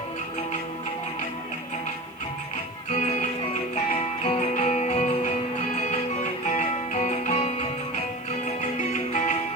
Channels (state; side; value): noise; left; hiss, 29 dB below the sound